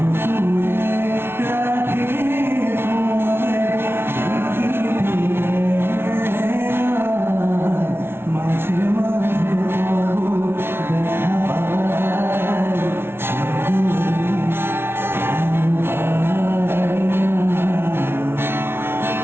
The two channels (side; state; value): left; late; 0.12 ms